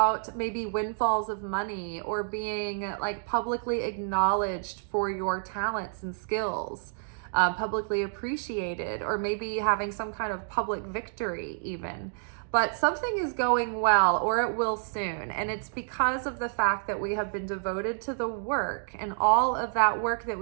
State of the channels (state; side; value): silent; left; digital silence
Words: maybe windfalls of money, or being like publicly acknowledged for your talents and skills. publicly appreciated, or maybe having some kind of public victory even. But something is going well, or it will soon. And it's because of the fact that we have been devoted to the work, and all of that work that